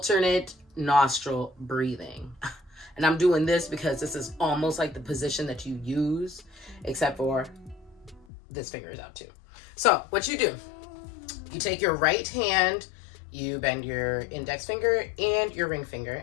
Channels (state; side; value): drops out; right; at 8.2 s